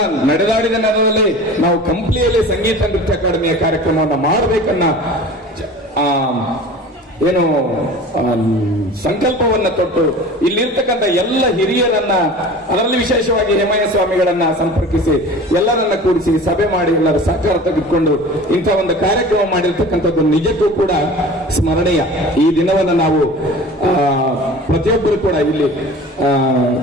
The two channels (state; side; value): normal; both; correlation 0.39